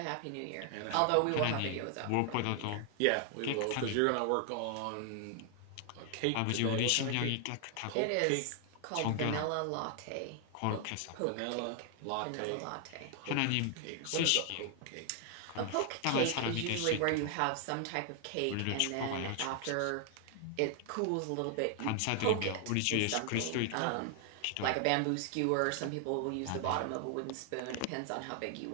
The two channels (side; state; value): both; different; correlation 0.00